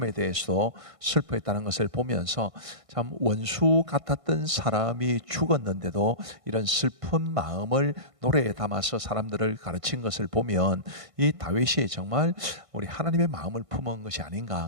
대해서 슬퍼했다는 것을 보면서 참 원수 같았던 사람이 죽었는데도 이런 슬픈 마음을 노래에 담아서 사람들을 가르친 것을 보면 이 다윗이 정말 우리 하나님의 마음을 품은 것이 아닌가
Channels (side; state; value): left; late; 1.5 ms